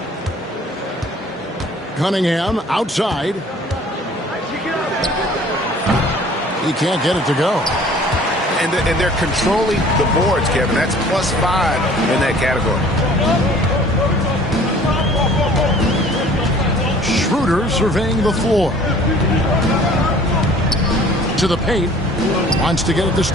Cunningham outside. He can't get it to go. And they're controlling the boards, Kevin. That's +5 in that category. Schroeder surveying the floor. To the paint. Wants to get it to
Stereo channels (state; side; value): normal; both; correlation 0.51